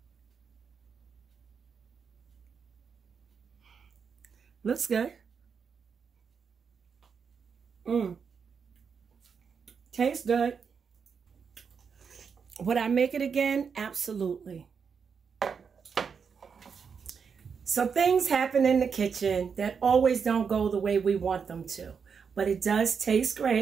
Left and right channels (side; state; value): left; quieter; 6.2 dB